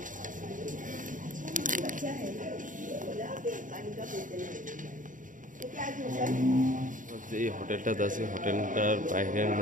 এই হোটেলটাতে আছে। হোটেলটার বাইরের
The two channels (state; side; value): late; left; 0.38 ms